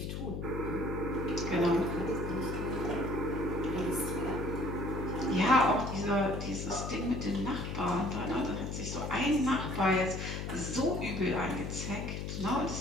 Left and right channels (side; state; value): left; noise; hum, 4 dB below the sound